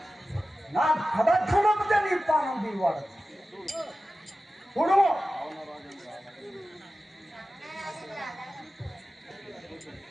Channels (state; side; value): normal; both; correlation 0.94